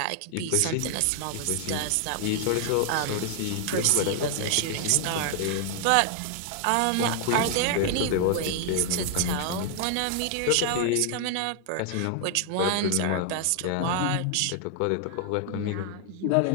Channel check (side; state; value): both; different; correlation 0.00